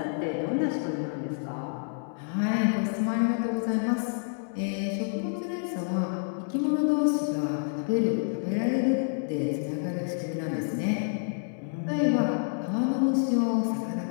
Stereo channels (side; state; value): right; silent; 59 dB below the other